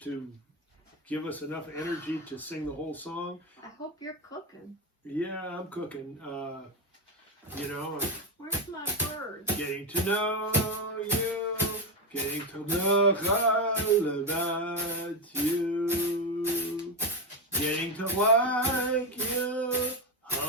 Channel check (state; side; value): normal; both; correlation 0.12